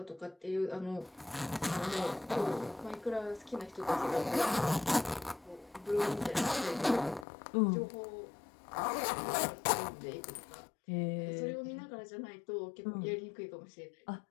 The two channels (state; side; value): drops out; right; at 7.2 s